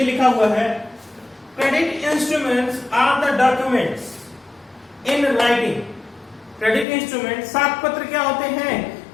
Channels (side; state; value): right; drops out; at 6.9 s